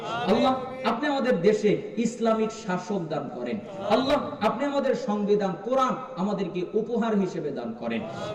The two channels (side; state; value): both; identical; correlation 1.00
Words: আল্লাহ, আপনি আমাদের দেশে ইসলামিক শাসক দান করেন। আল্লাহ, আপনি আমাদের সংবিধান কোরআন আমাদেরকে উপহার হিসেবে দান করেন।